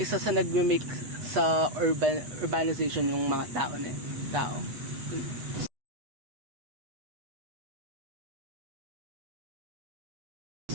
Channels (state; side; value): late; left; 8.2 ms